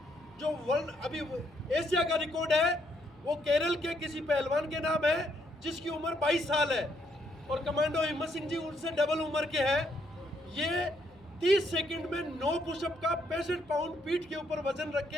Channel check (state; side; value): noise; left; hum, 27 dB below the sound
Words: जो वर्ल्ड अभी एशिया का रिकॉर्ड है वो केरल के किसी पहलवान के नाम है जिसकी उम्र 22 साल है, और कमांडो हिम्मत सिंह जी उनसे डबल उम्र के हैं। ये 30 सेकंड में 9 पुशअप का 65 पाउंड पीठ के ऊपर वजन रख के